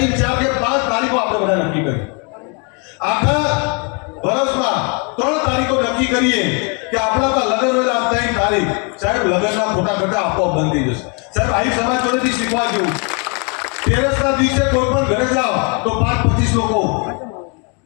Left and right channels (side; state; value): right; quieter; 35.1 dB